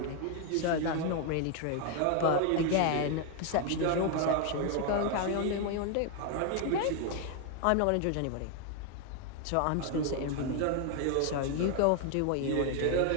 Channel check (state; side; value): different; both; correlation 0.01